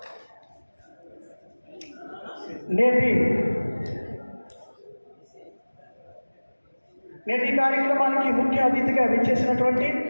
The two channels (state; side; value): inverted; both; correlation -1.00